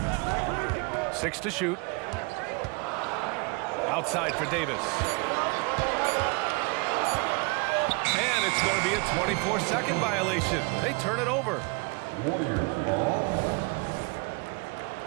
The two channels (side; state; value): left; quieter; 29.7 dB